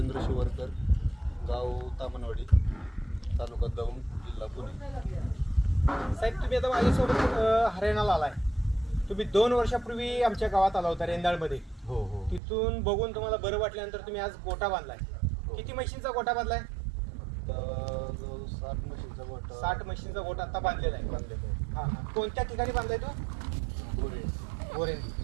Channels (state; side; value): drops out; left; at 12.4 s